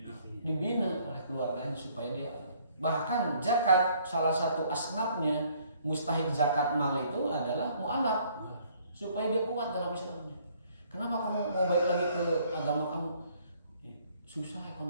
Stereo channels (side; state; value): both; inverted; correlation -0.62